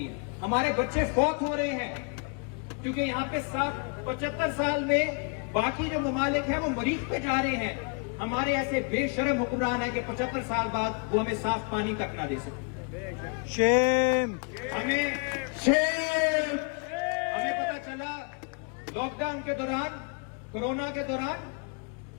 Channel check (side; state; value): right; quieter; 38.8 dB